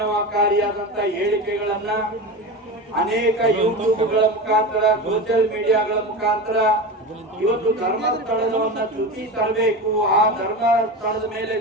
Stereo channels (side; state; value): both; normal; correlation 0.25